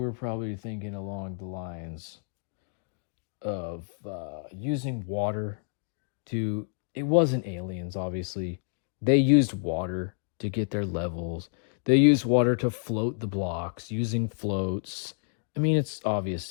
probably thinking along the lines of using water to... It wasn't aliens, obviously. They used water to get their levels. They used water to float the blocks using floats. I mean, it's obvious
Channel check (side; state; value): right; silent; digital silence